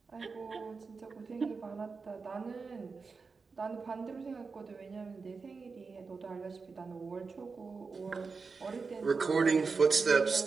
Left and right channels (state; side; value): quieter; left; 4.6 dB